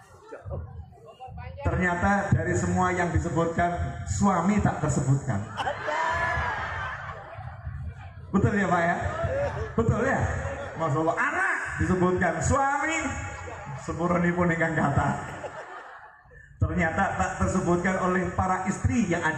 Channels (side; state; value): both; identical; correlation 1.00